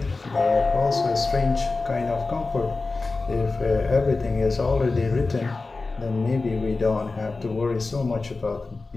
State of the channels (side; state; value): right; quieter; 3.7 dB